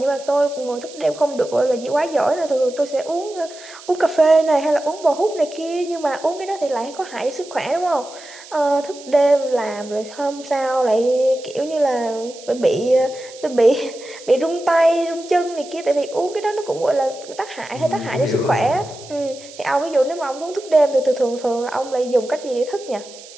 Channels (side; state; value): right; noise; hiss, 18 dB below the sound